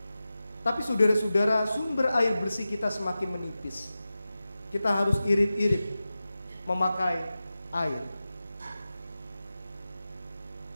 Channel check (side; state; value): both; inverted; correlation -0.94